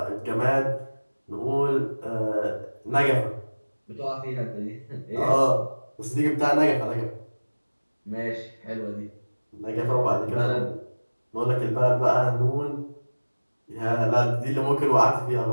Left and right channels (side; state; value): both; inverted; correlation -1.00